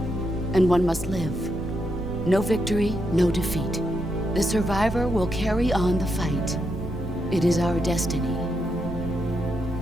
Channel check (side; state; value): both; normal; correlation 0.81